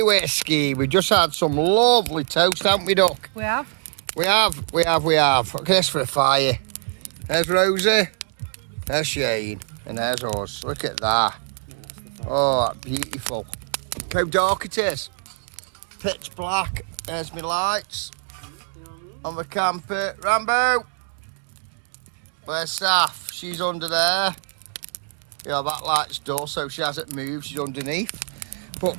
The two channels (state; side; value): silent; left; digital silence